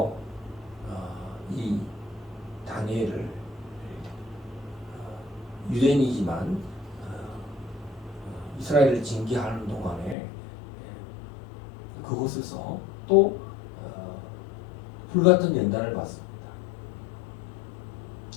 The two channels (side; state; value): right; drops out; at 10.2 s